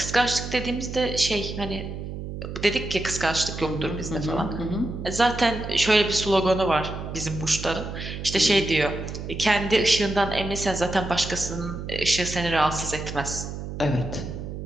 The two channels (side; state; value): right; noise; hum, 7 dB below the sound